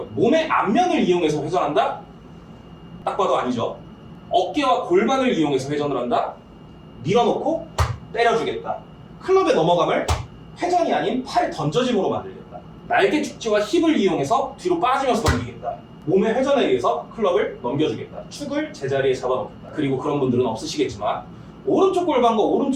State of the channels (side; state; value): both; identical; correlation 1.00